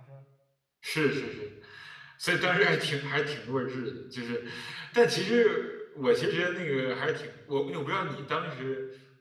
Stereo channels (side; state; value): both; identical; correlation 1.00